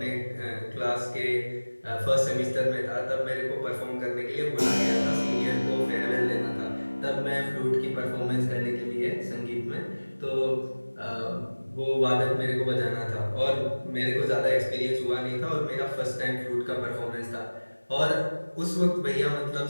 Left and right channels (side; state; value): both; inverted; correlation -1.00